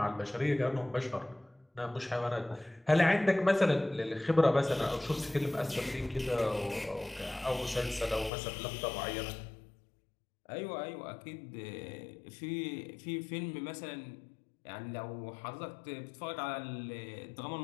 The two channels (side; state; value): right; drops out; at 8.3 s